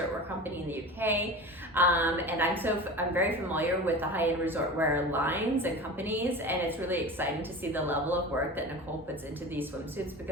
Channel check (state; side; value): normal; both; correlation 0.32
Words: wear company in the UK. And I'm very familiar with the high-end resort wear lines and companies, and it's really exciting to see the level of work that Nicole puts into these swimsuits